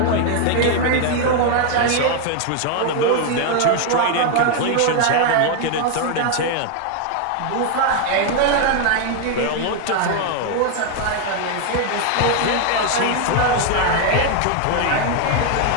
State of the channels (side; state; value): both; different; correlation 0.01